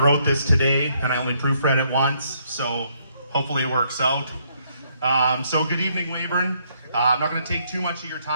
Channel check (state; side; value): inverted; both; correlation -0.71